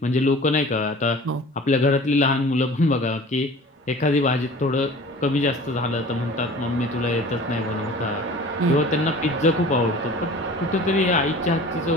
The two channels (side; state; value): both; normal; correlation 0.43